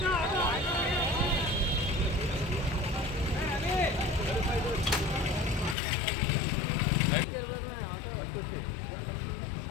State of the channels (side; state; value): right; drops out; at 5.8 s